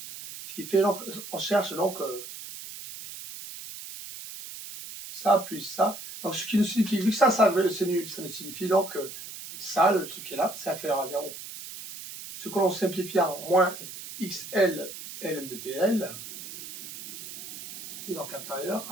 Ce qui fait donc, on cherche donc ça plus ça. Donc ce qui nous signifie, vu que ça nous signifie donc que ça, le truc qui est là, c'est inférieur à 0. Ce que l'on simplifie en moins XL ln de PL, qui est donc inférieur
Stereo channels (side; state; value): right; noise; hiss, 11 dB below the sound